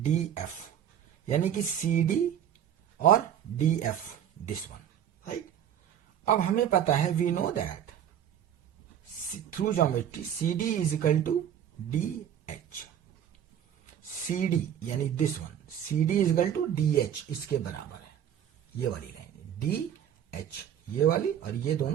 F यानी कि सी डी और D F, this one, right. अब हमें पता है, we know that through geometry C D is equal to D H, C D यानी this one, C D is equal to D H, इसके बराबर है ये वाली लाइन, डी एच ये वाली, और ये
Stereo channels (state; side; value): quieter; left; 9.7 dB